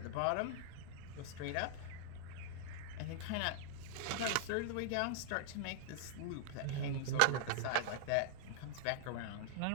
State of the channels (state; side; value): different; both; correlation -0.01